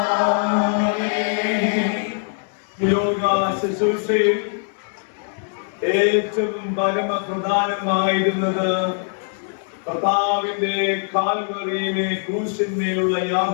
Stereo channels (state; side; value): silent; right; 64 dB below the other